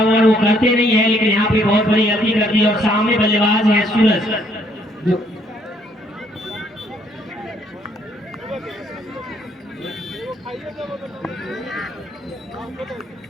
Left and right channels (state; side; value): normal; both; correlation 0.67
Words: ओवर वो करते नहीं है, लेकिन यहाँ पे बहुत बड़ी गलती कर दी और सामने बल्लेबाज है सूरज जो